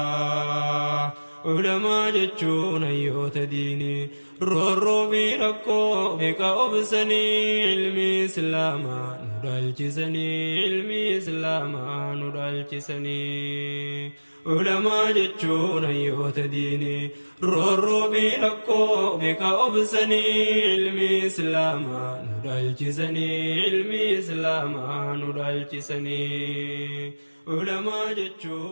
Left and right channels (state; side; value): inverted; both; correlation -1.00